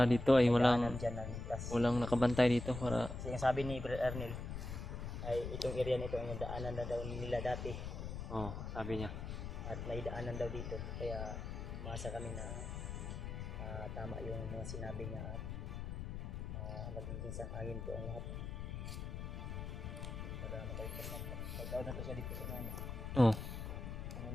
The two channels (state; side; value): noise; left; rumble, 5 dB below the sound